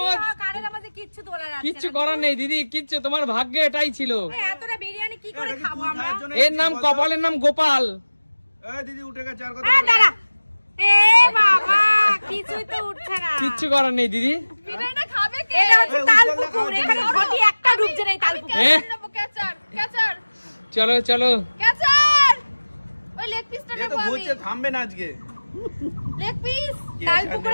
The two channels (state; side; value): inverted; both; correlation -1.00